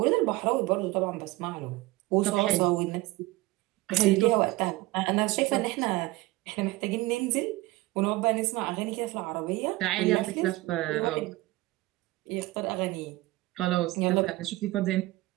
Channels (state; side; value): quieter; left; 19.7 dB